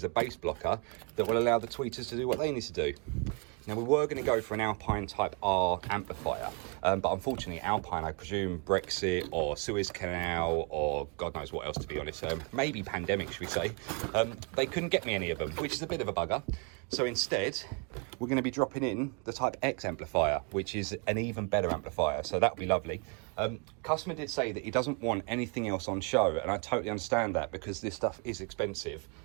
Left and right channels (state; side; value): quieter; left; 33.8 dB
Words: a bass blocker that will allow the tweeters to do what they need to do. Now, we were going to go for an Alpine Type R amplifier, but unfortunately Alpine, I presume Brexit or Suez Canal or God knows what else, to be honest, maybe pandemic, should we say, they couldn't get me any of them, which is a bit of a bugger. So instead, we're going to be dropping in the Type X amplifier, which is an even better amplifier, so that'll be lovely. Customer did say that he doesn't want anything else on show, and I totally understand that because this stuff is expensive